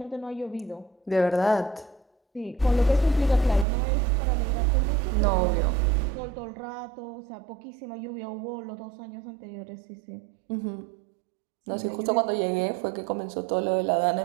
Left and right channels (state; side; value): drops out; left; at 3.7 s